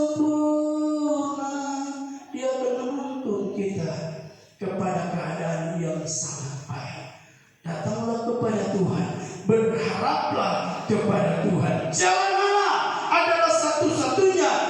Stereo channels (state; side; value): identical; both; correlation 1.00